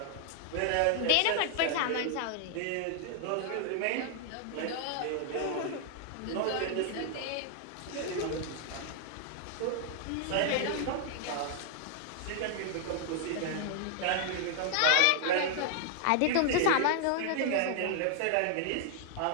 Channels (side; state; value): both; different; correlation 0.00